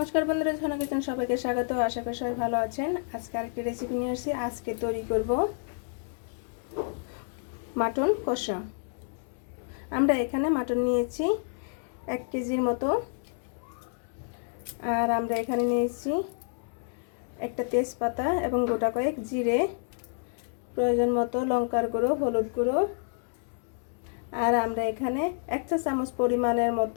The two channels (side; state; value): right; silent; 58 dB below the other